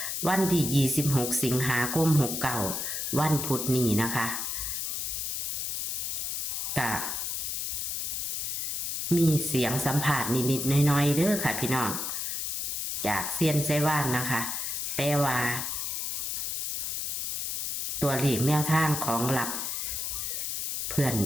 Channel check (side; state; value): left; noise; hiss, 2 dB below the sound